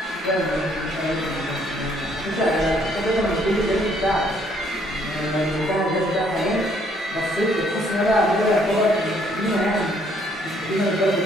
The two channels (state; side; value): normal; both; correlation 0.66